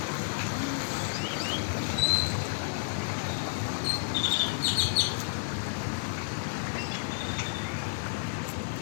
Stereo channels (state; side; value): silent; right; digital silence